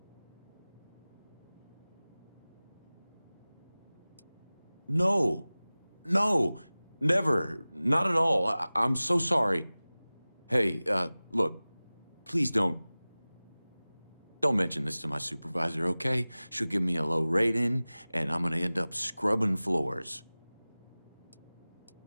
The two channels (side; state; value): both; inverted; correlation -0.98